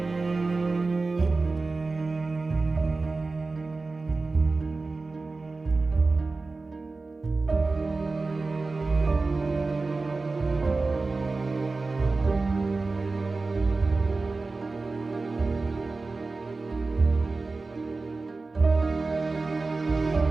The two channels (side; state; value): left; quieter; 3.7 dB